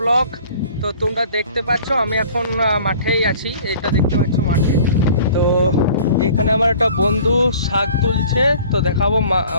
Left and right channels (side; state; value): both; inverted; correlation -0.48